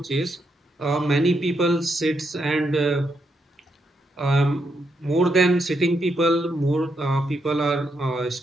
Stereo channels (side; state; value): both; normal; correlation 0.80